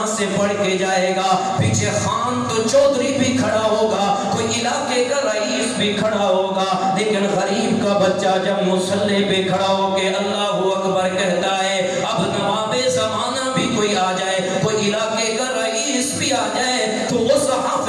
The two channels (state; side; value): identical; both; correlation 1.00